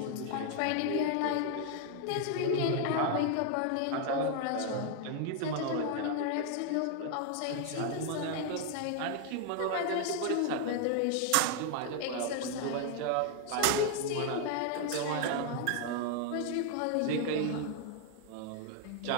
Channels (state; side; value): different; both; correlation 0.00